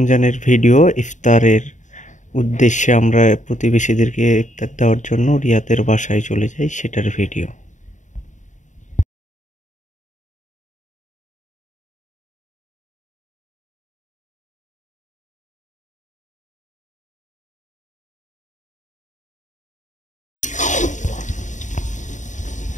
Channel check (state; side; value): late; right; 0.36 ms